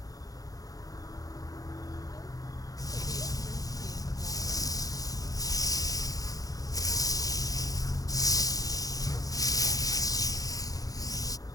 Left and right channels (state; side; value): late; right; 0.18 ms